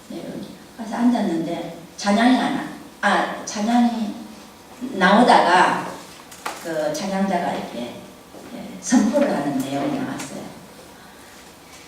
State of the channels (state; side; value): identical; both; correlation 1.00